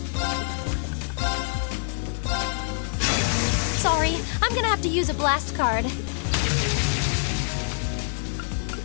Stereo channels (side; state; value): right; silent; digital silence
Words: Sorry, I'm gonna have to use a blast card.